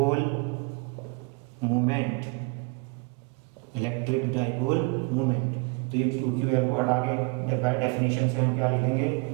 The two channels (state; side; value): quieter; left; 30.5 dB